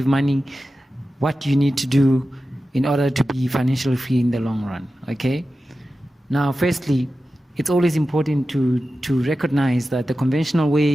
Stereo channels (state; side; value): normal; both; correlation 0.93